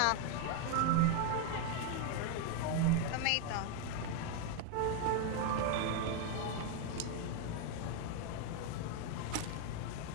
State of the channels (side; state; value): both; different; correlation 0.01